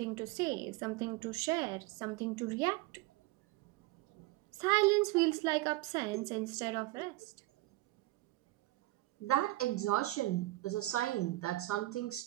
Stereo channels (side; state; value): left; quieter; 18.9 dB